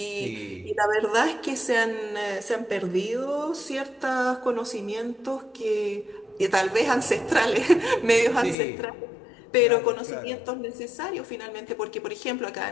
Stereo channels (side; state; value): right; drops out; at 8.6 s